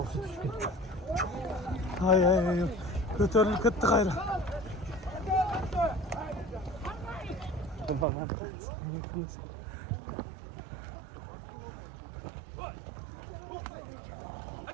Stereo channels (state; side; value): drops out; left; at 8.1 s